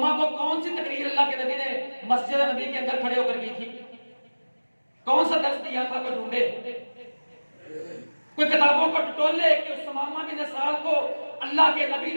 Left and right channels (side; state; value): both; inverted; correlation -1.00